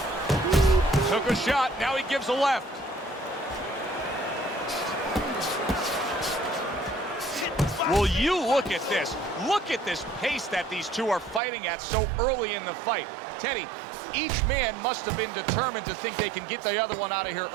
Took a shot, now he gives a left. Will you look at this? Look at this pace that these two are fighting at so early in the fight. Teddy, each man must have been determined to think they can get the other one out of here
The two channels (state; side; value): drops out; left; at 11.4 s